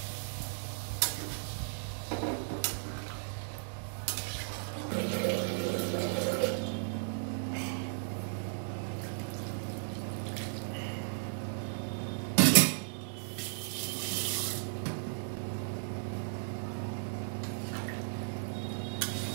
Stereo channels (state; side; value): silent; left; digital silence